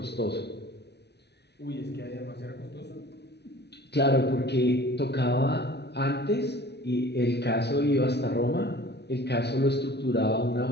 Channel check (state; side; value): late; right; 0.49 ms